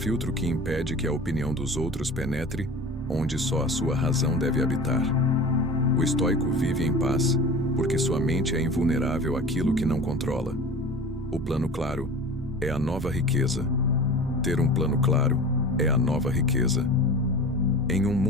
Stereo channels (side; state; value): both; normal; correlation 0.37